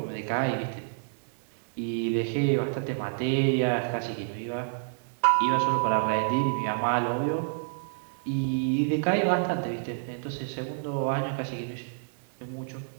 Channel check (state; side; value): silent; left; digital silence